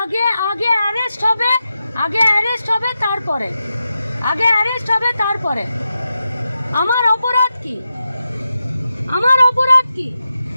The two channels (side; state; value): both; inverted; correlation -0.89